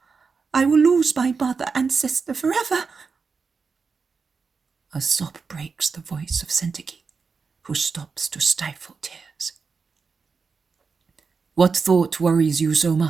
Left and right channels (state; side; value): quieter; left; 5.0 dB